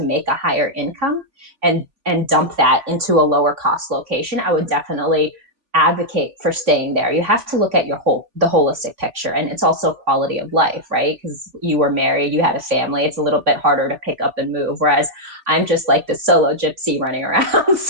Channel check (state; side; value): late; left; 3.4 ms